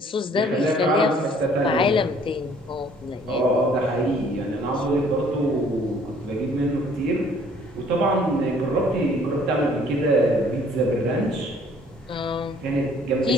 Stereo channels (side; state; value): both; normal; correlation 0.58